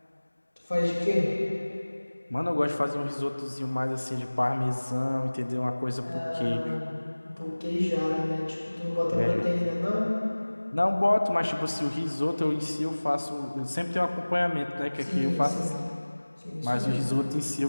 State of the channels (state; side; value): inverted; both; correlation -1.00